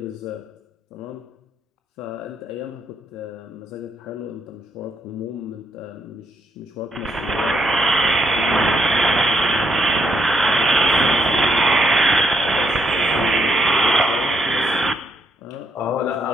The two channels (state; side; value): normal; both; correlation 0.74